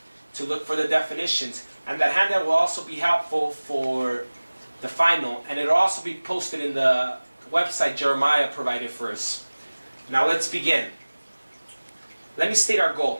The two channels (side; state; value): both; inverted; correlation -1.00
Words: to look for the definitions. And that handout will also be helpful for the final, and it'll also be posted in the website Jeremiah provided for us. Now let's begin. Let me state our